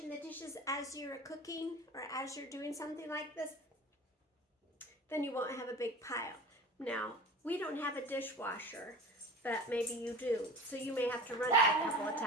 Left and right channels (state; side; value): normal; both; correlation 0.37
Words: the dishes as you're cooking or as you're doing something like this, then you won't have a big pile. Now, we don't have a dishwasher, but maybe you do, so you may have to run it a couple of